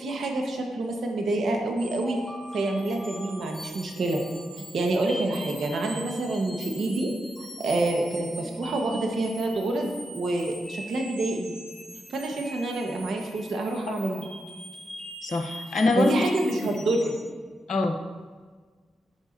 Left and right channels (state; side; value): normal; both; correlation 0.84